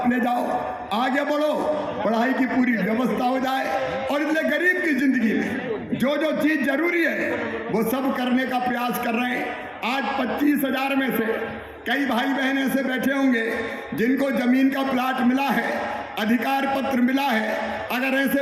ले जाओ, आगे बढ़ो, पढ़ाई की पूरी व्यवस्था हो जाए। और इसलिए गरीब की जिंदगी में जो जो चीज जरूरी है वो सब करने का प्रयास कर रहे हैं। आज 25,000 में से कई भाई बहन ऐसे बैठे होंगे जिनको जमीन का प्लाट मिला है, अधिकार पत्र मिला है। अगर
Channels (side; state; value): both; identical; correlation 1.00